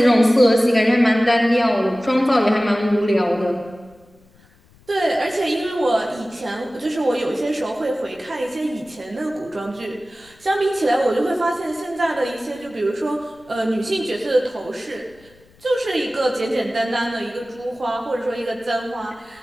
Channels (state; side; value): noise; left; rumble, 29 dB below the sound